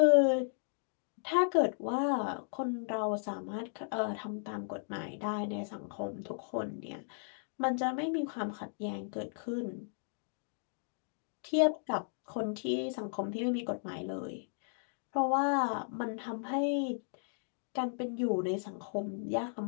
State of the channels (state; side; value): silent; right; digital silence